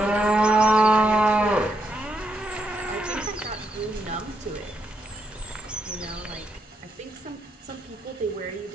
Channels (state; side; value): normal; both; correlation 0.79